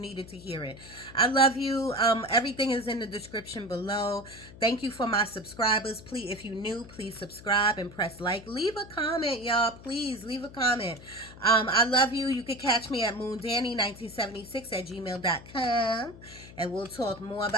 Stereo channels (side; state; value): left; noise; hum, 18 dB below the sound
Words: to hear it. I love you. Everything is in the description below. Thank you for my subscribers. Please, if you're new, please subscribe and press like. Leave a comment, y'all. Please leave a comment. I love you. You can catch me at moondanny1976@gmail.com, and we'll talk more